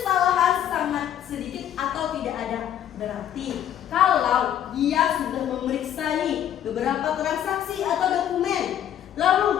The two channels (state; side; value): quieter; right; 10.5 dB